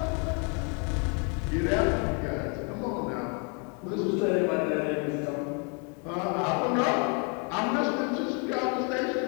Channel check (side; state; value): right; quieter; 36.8 dB